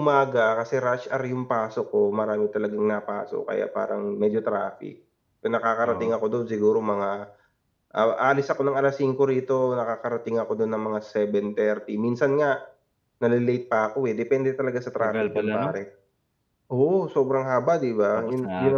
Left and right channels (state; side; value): identical; both; correlation 1.00